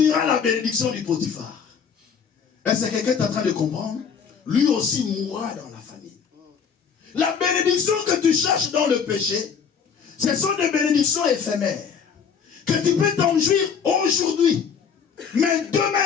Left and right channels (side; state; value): right; quieter; 6.7 dB